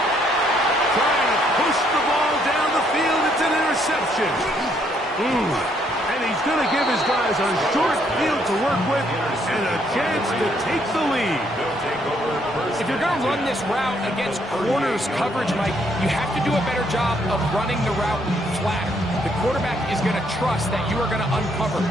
Trying to push the ball down the field. It's an interception. And he he's going to give his guys a short field to work with and a chance to take the lead. If you're going to run this route against corners coverage, Mike, you have to do a better job of running the route flatter. The quarterback is going to trust that you are going to uncover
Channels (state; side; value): normal; both; correlation 0.70